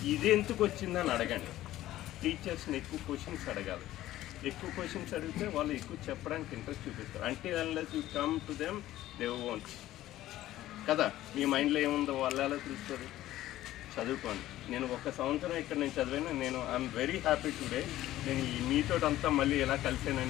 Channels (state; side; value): quieter; right; 14.6 dB